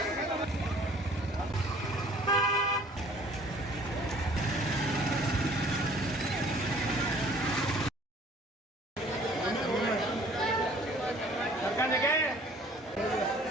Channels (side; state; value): both; normal; correlation 0.54